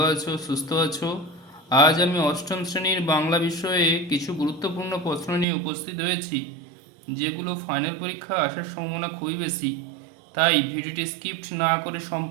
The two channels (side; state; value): left; drops out; at 5.5 s